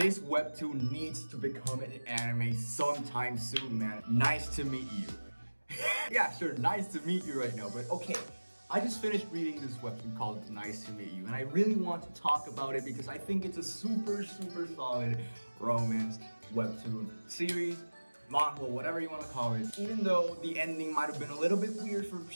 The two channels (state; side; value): inverted; both; correlation -1.00